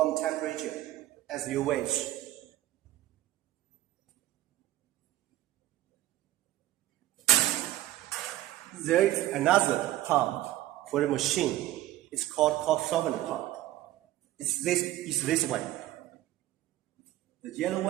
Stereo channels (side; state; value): left; quieter; 15.0 dB